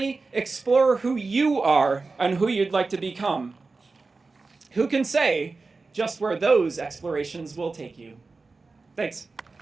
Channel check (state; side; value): quieter; left; 3.9 dB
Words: explore who you are and who you'd like to become. Who can say just where those explorations will take you? Thanks.